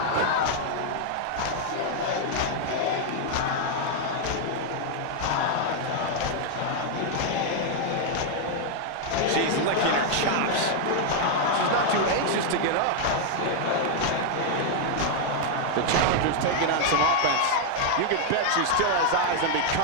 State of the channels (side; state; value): both; different; correlation 0.00